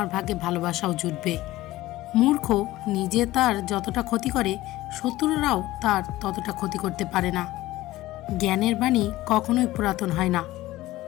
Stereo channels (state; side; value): quieter; right; 16.9 dB